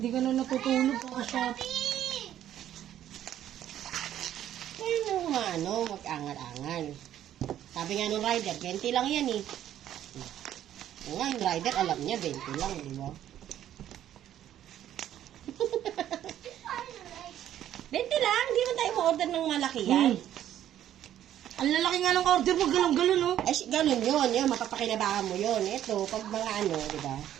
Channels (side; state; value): left; quieter; 11.4 dB